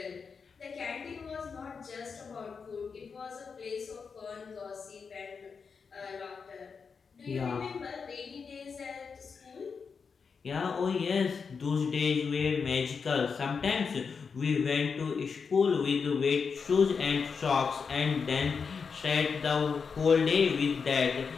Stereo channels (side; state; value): right; quieter; 5.6 dB